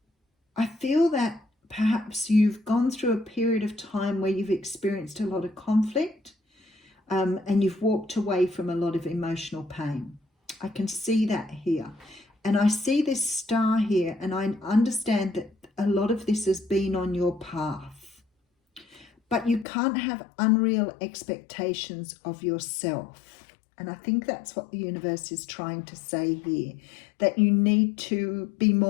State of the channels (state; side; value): drops out; right; at 19.7 s